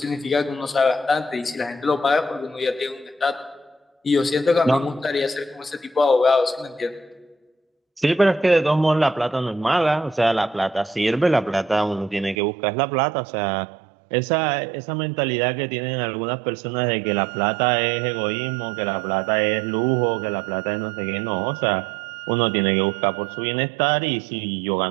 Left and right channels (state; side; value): drops out; left; at 12.4 s